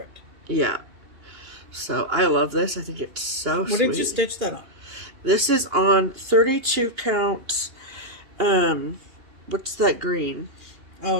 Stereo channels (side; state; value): left; late; 2.9 ms